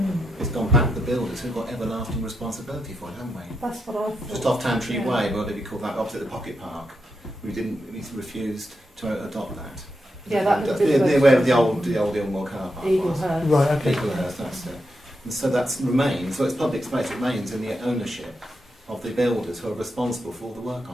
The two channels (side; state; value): both; normal; correlation 0.85